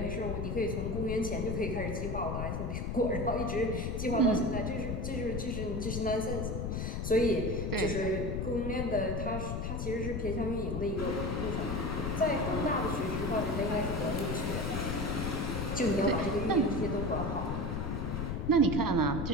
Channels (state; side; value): noise; left; rumble, 2 dB below the sound